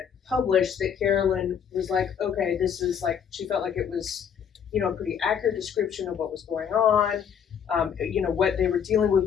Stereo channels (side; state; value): right; quieter; 7.8 dB